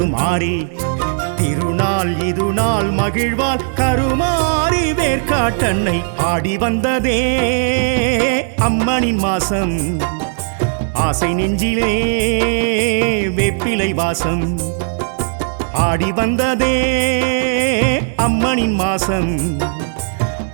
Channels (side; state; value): left; silent; digital silence